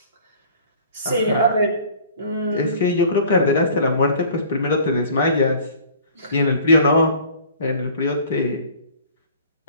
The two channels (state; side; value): inverted; both; correlation -0.49